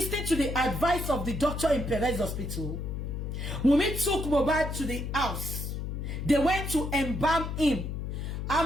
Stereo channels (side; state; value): left; noise; hum, 4 dB below the sound